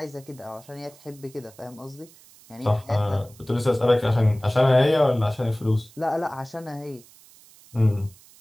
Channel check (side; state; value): right; noise; hiss, 25 dB below the sound